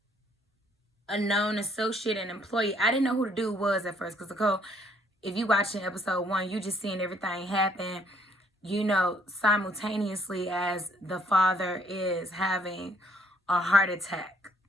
a known associate and employee. I didn't know who the dude was at first, because Nicole, if you watching episode 1, you just seeing everything happen, simultaneously as the father is having a heart attack.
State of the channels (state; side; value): normal; both; correlation 0.65